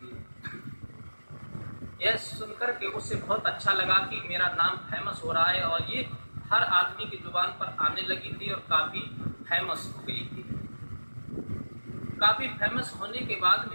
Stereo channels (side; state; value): both; inverted; correlation -1.00